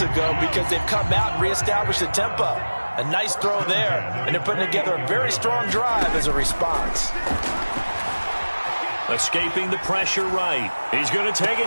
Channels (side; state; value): both; inverted; correlation -1.00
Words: ago because they've come out and reestablished the tempo. A nice throw there, and they're putting together a very strong drive as a response. Escaping the pressure right. He's going to take